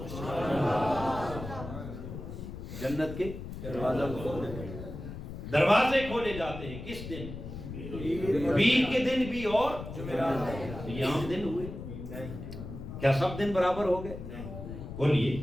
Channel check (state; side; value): noise; left; rumble, 9 dB below the sound